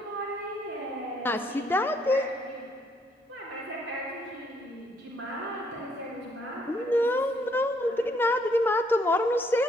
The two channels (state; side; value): normal; both; correlation 0.69